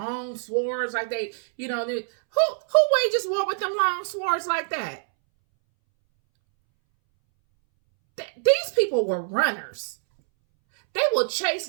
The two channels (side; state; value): left; silent; 62 dB below the other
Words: swords like who wages war with them long swords like that? These people were runners. They will chase